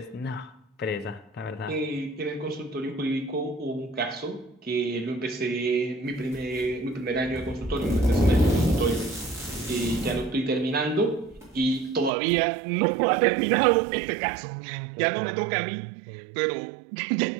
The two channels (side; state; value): left; drops out; at 12.1 s